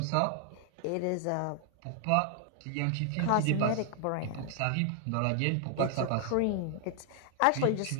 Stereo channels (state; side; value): different; both; correlation 0.00